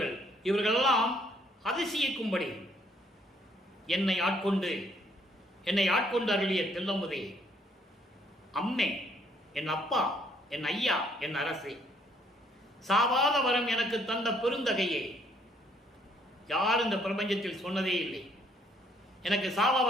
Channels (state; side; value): normal; both; correlation 0.66